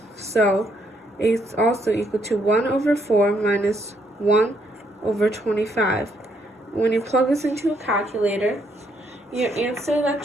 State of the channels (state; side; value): normal; both; correlation 0.72